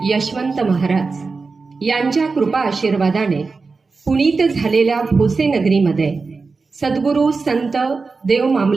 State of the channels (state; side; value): quieter; left; 4.3 dB